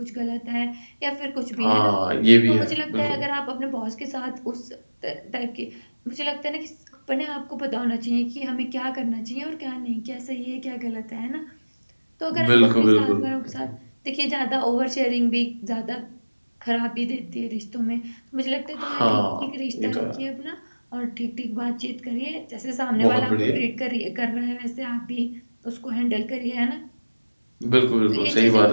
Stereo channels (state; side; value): inverted; both; correlation -1.00